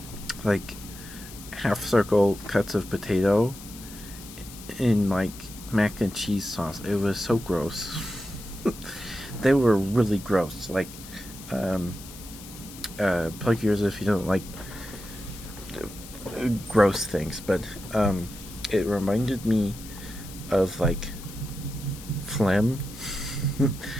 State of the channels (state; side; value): noise; left; hiss, 16 dB below the sound